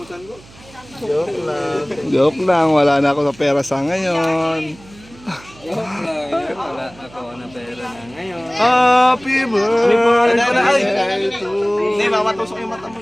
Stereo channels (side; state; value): right; noise; hum, 23 dB below the sound